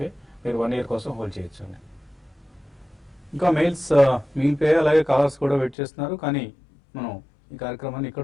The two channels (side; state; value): right; drops out; at 5.8 s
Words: మీరు 1 year కోసం హోల్డ్ చేయొచ్చు అండి. ఇంకా మెయిల్స్ మిగిలిపోయాయి, అలాగే కాలర్స్ కూడా వెయిట్ చేస్తున్నారు. కానీ మనం ఈ కార్యక్రమాన్ని